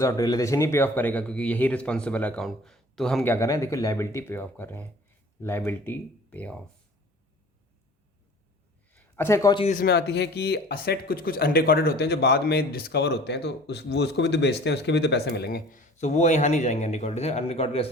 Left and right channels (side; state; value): both; normal; correlation 0.46